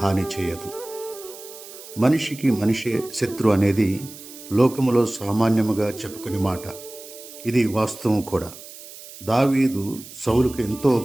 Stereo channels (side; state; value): right; noise; hiss, 16 dB below the sound